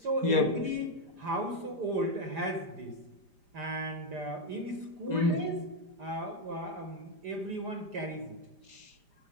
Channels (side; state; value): left; late; 5.0 ms